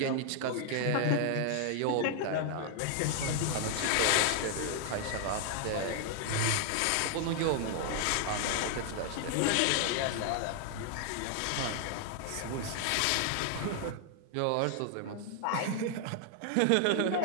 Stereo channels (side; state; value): both; different; correlation 0.00